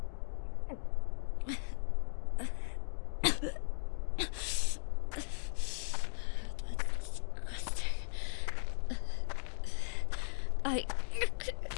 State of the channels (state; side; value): silent; right; digital silence